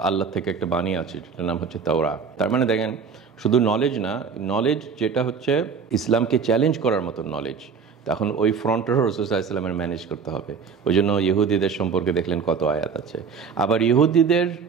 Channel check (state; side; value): quieter; left; 5.9 dB